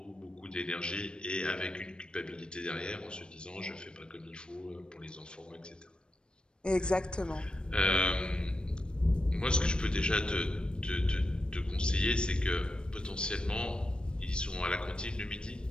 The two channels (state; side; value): late; right; 0.052 ms